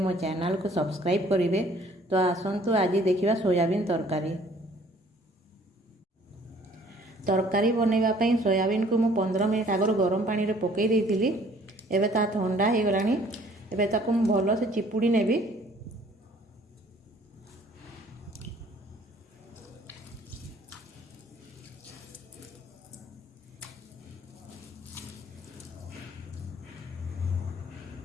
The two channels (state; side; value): normal; both; correlation 0.57